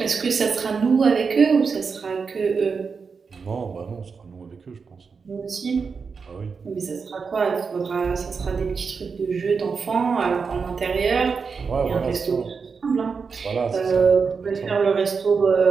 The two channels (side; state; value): left; quieter; 5.3 dB